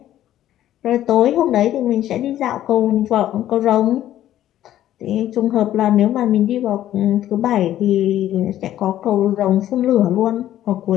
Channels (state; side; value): quieter; right; 12.5 dB